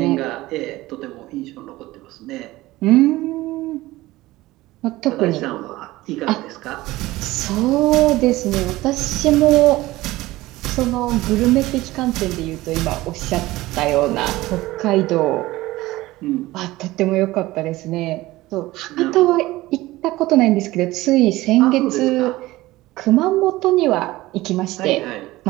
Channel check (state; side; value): quieter; left; 18.2 dB